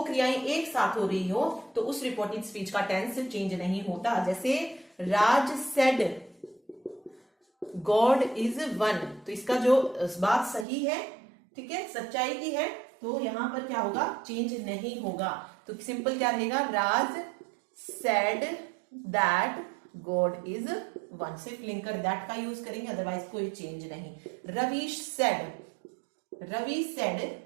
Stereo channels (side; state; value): left; drops out; at 10.7 s